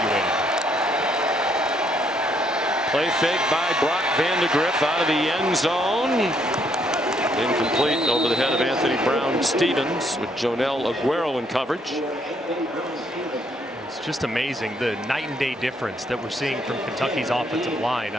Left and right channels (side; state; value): both; normal; correlation 0.70